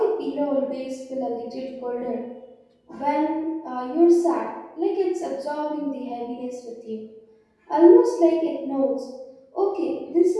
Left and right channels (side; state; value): both; identical; correlation 1.00